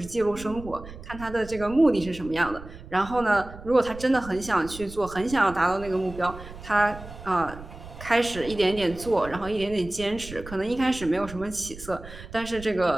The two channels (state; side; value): noise; right; rumble, 14 dB below the sound